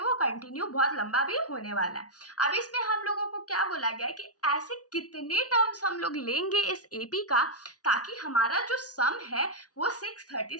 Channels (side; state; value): right; late; 0.68 ms